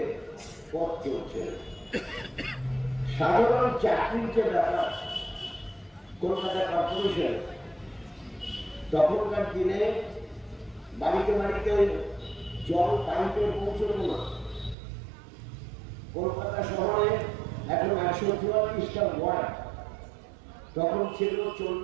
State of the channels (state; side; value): drops out; left; at 14.8 s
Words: পথ চলছে। সাধারণ চাকরির যে ব্যাপার, কলকাতা কর্পোরেশন তখনকার দিনে বাড়িতে বাড়িতে জল পাইপে পৌঁছল না। কলকাতা শহরে এখন ১৪৪টা ওয়ার্ড, তখন ছিল